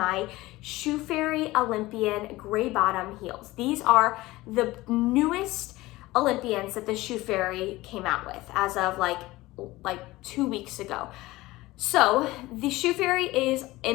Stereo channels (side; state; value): right; quieter; 19.0 dB